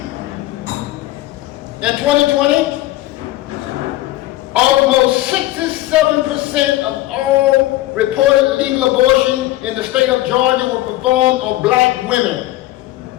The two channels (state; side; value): quieter; right; 16.6 dB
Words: In 2020, almost 67% of all reported legal abortion in the state of Georgia were performed on black women.